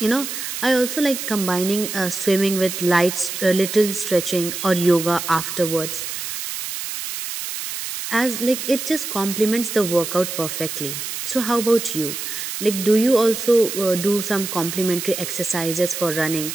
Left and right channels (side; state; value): right; noise; hiss, 6 dB below the sound